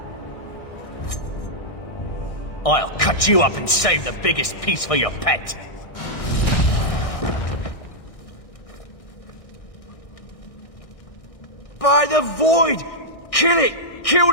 I'll cut you up and save the biggest piece for your pet. By the void! Kill it! Kill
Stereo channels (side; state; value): right; late; 1.6 ms